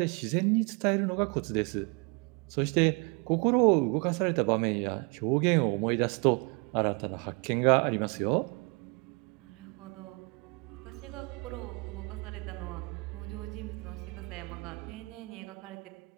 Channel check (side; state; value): left; quieter; 31.3 dB